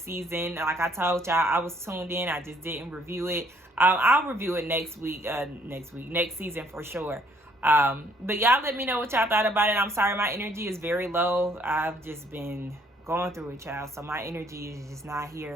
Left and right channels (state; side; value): normal; both; correlation 0.65